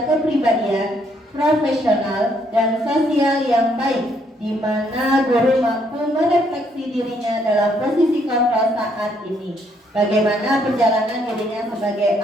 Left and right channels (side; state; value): both; normal; correlation 0.70